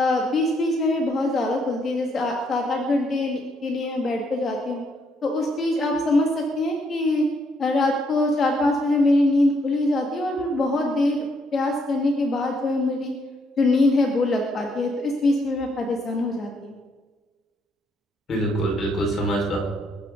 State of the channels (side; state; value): both; normal; correlation 0.73